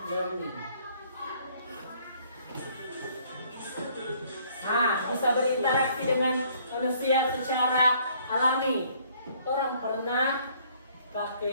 learning. Nah, bisa berinteraksi dengan manusia secara alami. Orang pernah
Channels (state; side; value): inverted; both; correlation -0.62